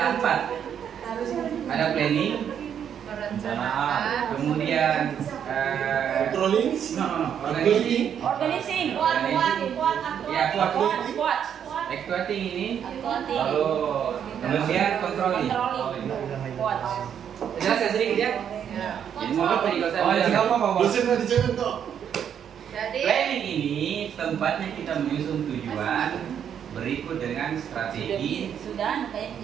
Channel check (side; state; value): left; quieter; 8.7 dB